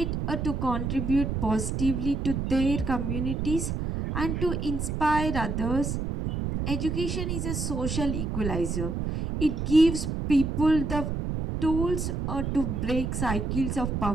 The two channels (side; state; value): right; noise; rumble, 2 dB below the sound